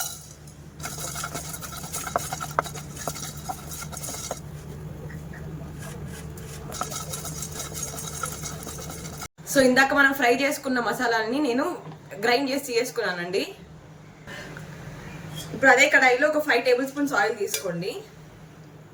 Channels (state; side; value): identical; both; correlation 1.00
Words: సో ఇందాక మనం ఫ్రై చేసుకున్న మసాలాలని నేను గ్రైండ్ చేసి చేసుకున్నానండి. ఇప్పుడు అదే కడాయిలో ఒక 5 tablespoons ఆయిల్ తీసుకోండి.